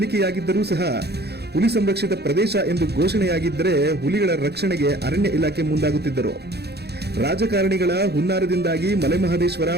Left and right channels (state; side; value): late; left; 0.48 ms